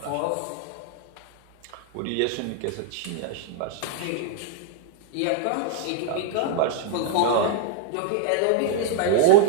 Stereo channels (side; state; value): both; different; correlation 0.00